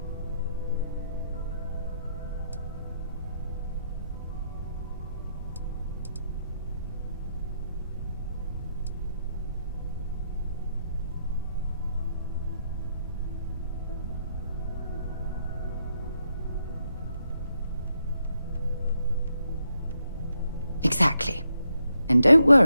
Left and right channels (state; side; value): inverted; both; correlation -0.79